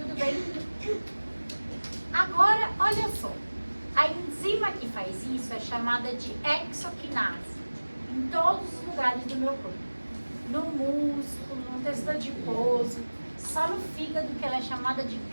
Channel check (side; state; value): both; inverted; correlation -1.00